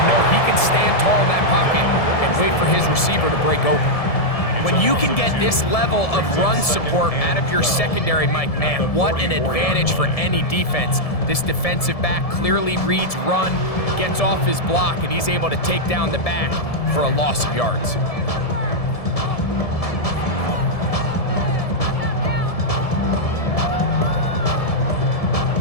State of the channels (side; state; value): right; late; 1.7 ms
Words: know he can stand tall in that pocket and wait for his receiver to break open. When you can get this level of run support out of your secondary, Mike, man, what an advantage for any defense. This defensive back clearly reads run, gets off his block, and he's able to take down the back for a loss of yards.